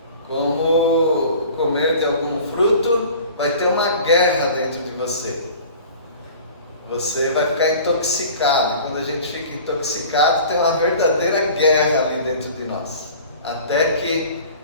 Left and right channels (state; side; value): inverted; both; correlation -0.43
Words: Como comer de algum fruto, vai ter uma guerra dentro de você. Você vai ficar intoxicado. E quando a gente fica intoxicado, tem uma verdadeira guerra ali dentro de nós. Até que